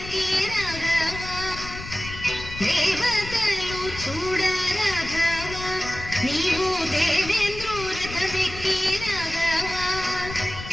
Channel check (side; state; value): left; noise; rumble, 11 dB below the sound